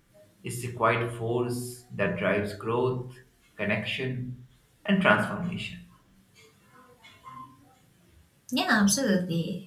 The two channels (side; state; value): both; identical; correlation 1.00